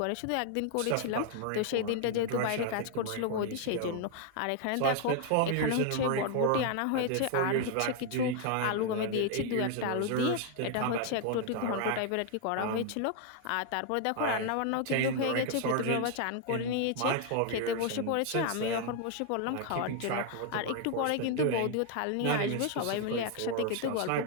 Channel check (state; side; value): different; both; correlation 0.00